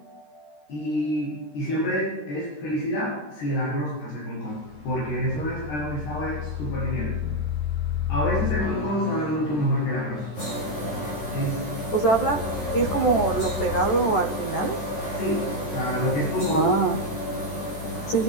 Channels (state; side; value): late; right; 13 ms